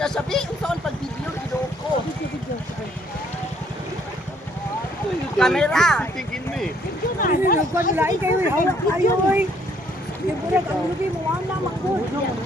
sabi unsaon pag video ko. Kamera. Tingin mo eh. Ano ko nila kayo hawak kayo oy. Di budak ang lubi mo wala magod.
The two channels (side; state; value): both; normal; correlation 0.65